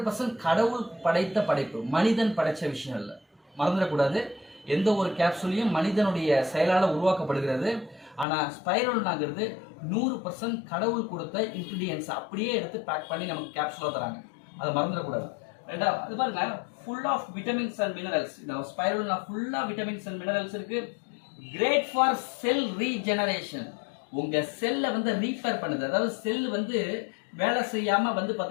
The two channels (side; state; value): right; drops out; at 8.2 s